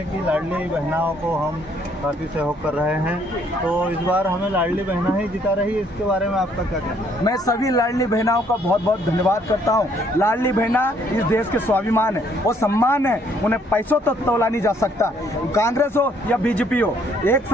कि लाडली बहनाओं को हम काफ़ी सहयोग कर रहे हैं, तो इस बार हमें लाडली बहना ही जिता रही है, इसके बारे में आपका क्या कहना है? मैं सभी लाडली बहनाओं का बहुत बहुत धन्यवाद करता हूं। लाडली बहना इस देश के स्वाभिमान है और सम्मान है, उन्हें पैसों तक तोला नहीं जा सकता। कांग्रेस हो या बीजेपी हो, एक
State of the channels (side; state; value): both; normal; correlation 0.65